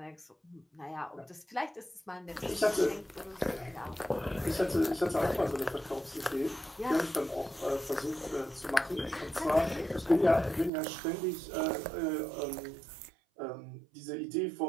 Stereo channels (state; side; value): drops out; left; at 10.7 s